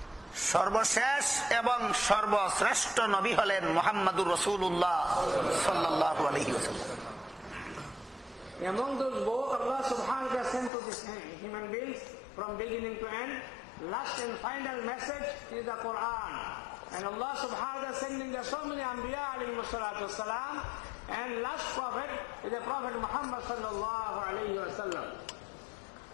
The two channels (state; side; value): drops out; right; at 10.7 s